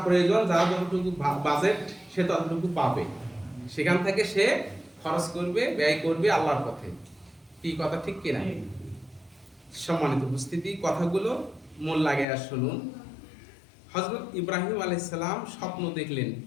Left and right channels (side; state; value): right; drops out; at 12.2 s